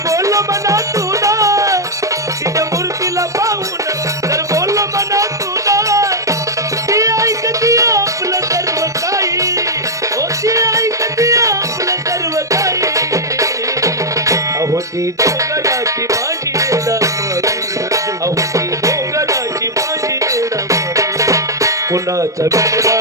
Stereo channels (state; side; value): late; left; 0.16 ms